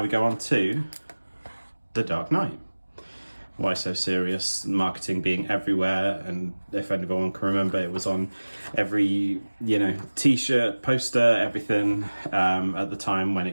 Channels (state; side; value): inverted; both; correlation -1.00